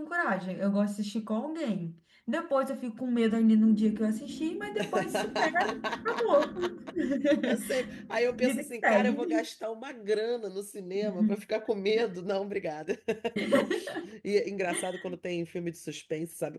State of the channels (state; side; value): identical; both; correlation 1.00